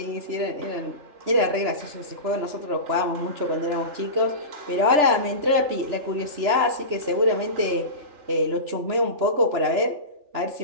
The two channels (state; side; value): late; left; 3.4 ms